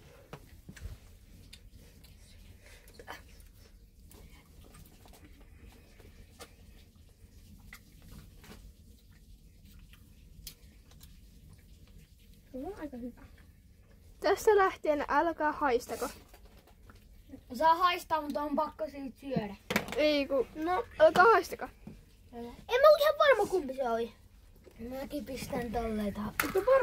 Se on aika hyvä. Tästä lähtien älkää haistako. Saa haistaa, mutta on pakko siitä syödä. Ei ku... No, älkää haistako. En mä ole ihan varma kumpi se oli. Mäkin pistän tolleen tähän. Mutta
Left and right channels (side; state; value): both; identical; correlation 1.00